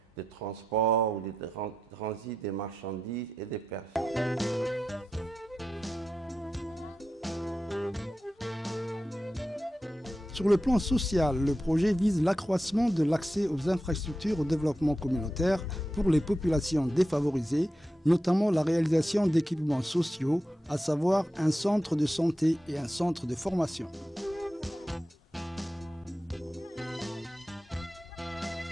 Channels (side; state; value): both; normal; correlation 0.89